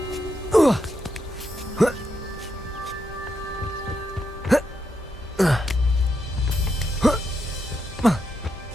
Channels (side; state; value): both; normal; correlation 0.82